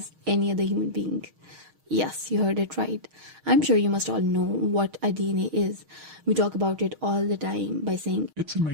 any other human being? Yes, you heard it right. I'm sure you must all know what a DNA is. We talk about it all the time by saying It's in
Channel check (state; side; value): late; left; 6.4 ms